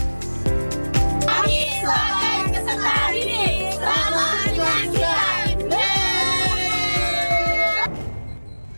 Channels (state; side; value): inverted; both; correlation -1.00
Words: Kami sebagai peserta hari ini. Selamat menyaksikan.